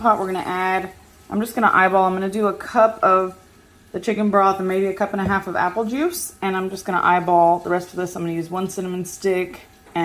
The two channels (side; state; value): both; identical; correlation 1.00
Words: We're going to add, I'm just going to eyeball, I'm going to do a cup of the chicken broth and maybe a cup and a half of apple juice, and I'm just going to eyeball the rest of this. I'm going to use 1 cinnamon stick